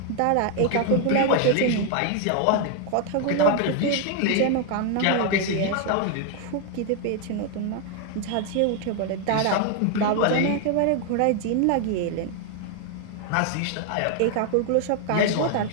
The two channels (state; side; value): different; both; correlation 0.00